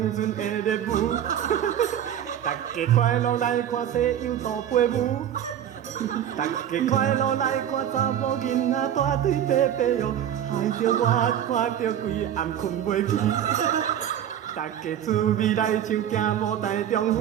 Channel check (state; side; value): quieter; left; 10.2 dB